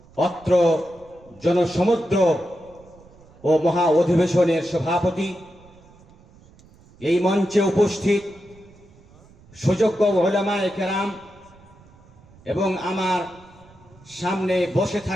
অত্র জনসমুদ্র ও মহা অধিবেশনের সভাপতি, এই মঞ্চে উপস্থিত সুযোগ্য উলামায়ে কেরাম এবং আমার সামনে বসে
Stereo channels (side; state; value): right; noise; rumble, 26 dB below the sound